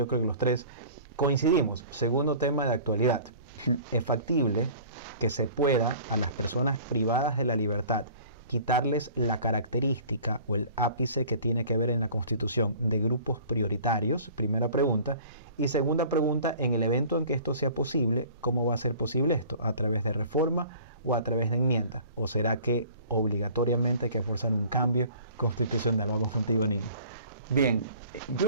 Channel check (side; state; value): both; inverted; correlation -0.47